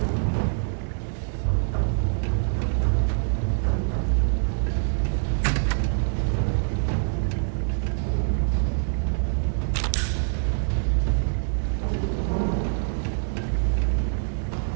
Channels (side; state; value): left; silent; digital silence